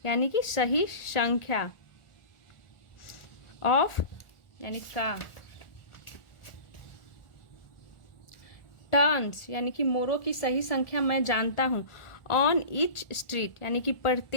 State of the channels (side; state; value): right; late; 1.4 ms